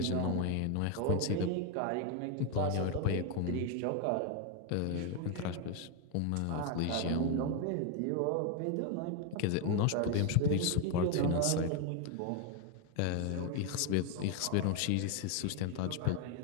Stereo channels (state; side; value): different; both; correlation 0.01